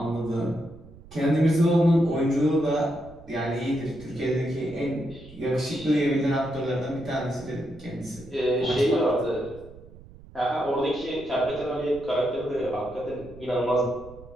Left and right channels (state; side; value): noise; right; rumble, 20 dB below the sound